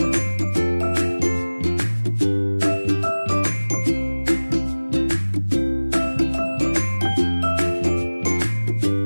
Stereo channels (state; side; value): inverted; both; correlation -1.00